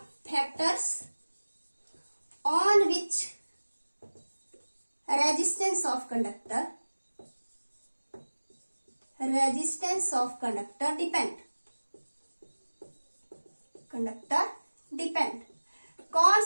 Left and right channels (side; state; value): both; inverted; correlation -1.00